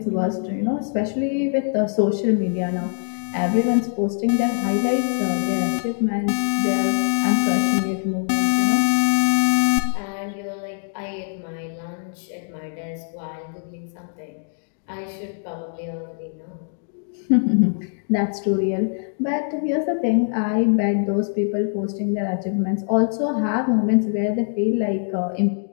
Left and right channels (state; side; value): silent; right; digital silence